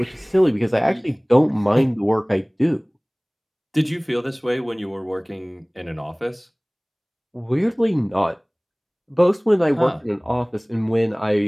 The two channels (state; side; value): identical; both; correlation 1.00